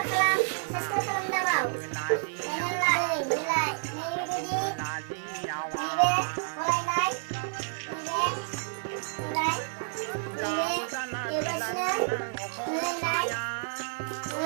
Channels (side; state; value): left; silent; 58 dB below the other